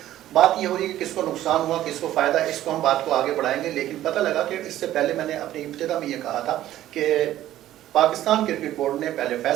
بات یہ ہو رہی ہے کہ کس کو نقصان ہوا، کس کو فائدہ، اس کو ہم بات کو آگے بڑھائیں گے، لیکن پتہ لگا کہ اس سے پہلے میں نے اپنی ابتدا میں یہ کہا تھا کہ پاکستان کرکٹ بورڈ نے پہلے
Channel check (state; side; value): quieter; left; 13.4 dB